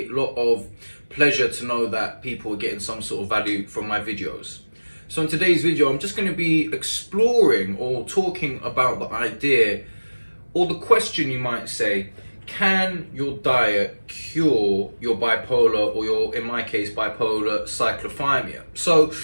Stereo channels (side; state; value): both; inverted; correlation -1.00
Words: lot of pleasure to know that people are getting some sort of value from my videos. So in today's video, I'm just going to be exploring or talking about the idea or the question, you might say, can your diet cure your bipolar or your, in my case, bipolar cyclothymia? So